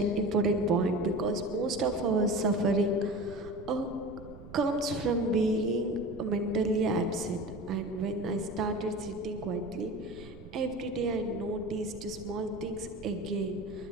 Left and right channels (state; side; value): noise; right; rumble, 16 dB below the sound